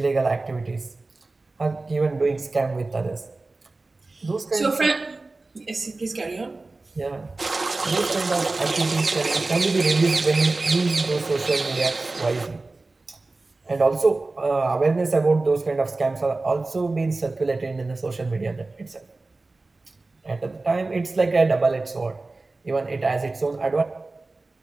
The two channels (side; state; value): left; quieter; 3.3 dB